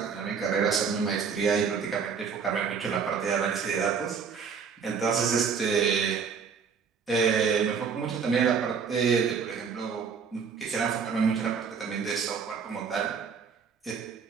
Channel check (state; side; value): quieter; left; 6.2 dB